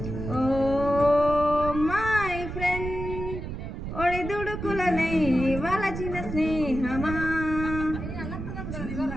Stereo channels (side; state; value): right; noise; rumble, 7 dB below the sound